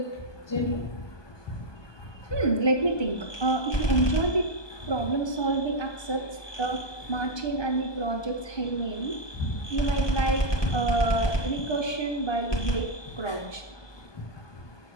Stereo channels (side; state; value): right; late; 1.2 ms